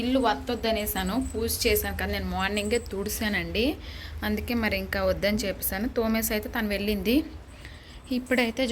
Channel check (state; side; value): identical; both; correlation 1.00